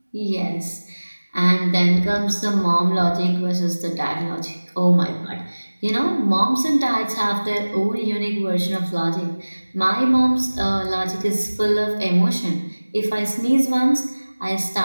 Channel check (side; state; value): both; inverted; correlation -1.00